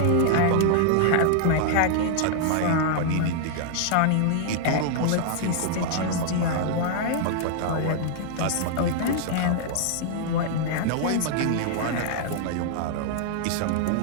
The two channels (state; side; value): different; both; correlation -0.01